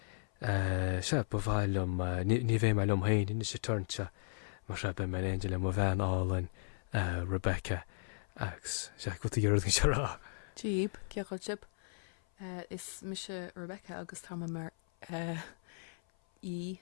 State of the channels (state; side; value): silent; right; 54 dB below the other